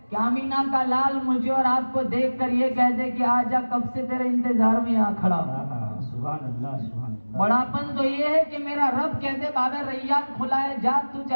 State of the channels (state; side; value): inverted; both; correlation -1.00